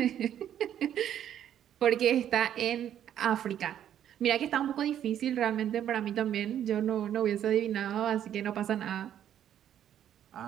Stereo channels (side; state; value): left; quieter; 10.4 dB